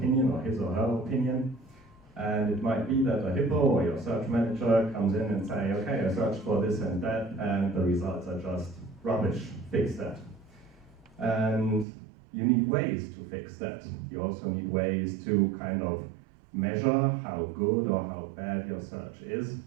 or his or her opinion. And it might be that a hippo or your search manager comes in and say, okay, I searched for this and that, and the results are just rubbish, fix that. And you need ways to fix that. You also need ways to kind of measure how good or how bad your search is,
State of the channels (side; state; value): left; drops out; at 11.9 s